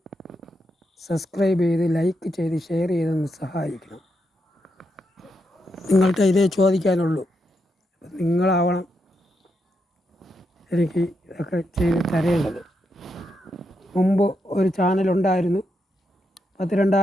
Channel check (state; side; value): normal; both; correlation 0.83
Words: സബ്സ്ക്രൈബ് ചെയ്ത് ലൈക്ക് ചെയ്ത് ഷെയർ ചെയ്തൊന്ന് സഹായിക്കണം. നിങ്ങൾക്ക് ഇതേ ചോദിക്കാനുള്ളൂ. നിങ്ങളാവണം എനിക്ക് ഇതൊക്കെ ചെയ്ത് തരേണ്ടത്. മുമ്പ് ഒരു ചാനലുണ്ടായിരുന്നു,